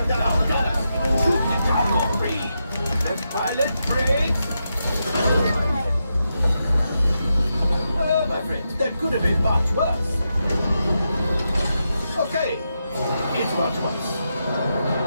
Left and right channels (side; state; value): both; inverted; correlation -0.86